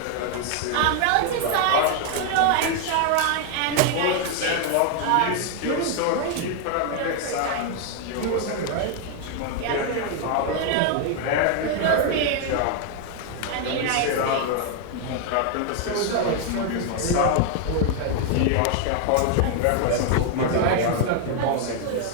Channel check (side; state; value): both; different; correlation 0.00